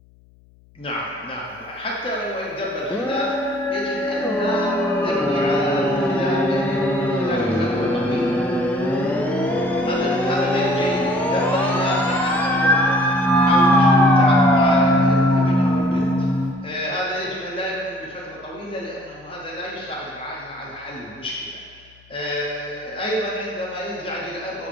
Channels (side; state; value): left; noise; hum, 29 dB below the sound